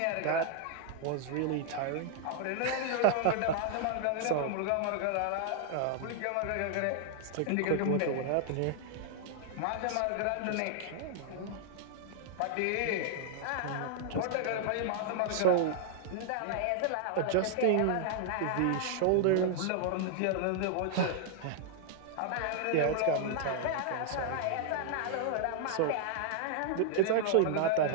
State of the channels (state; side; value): different; both; correlation -0.01